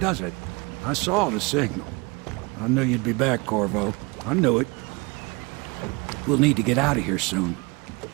it? I saw the signal. I knew you'd be back, Corvo. I knew it. We'll need to get out of here soon.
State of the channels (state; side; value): quieter; left; 27.2 dB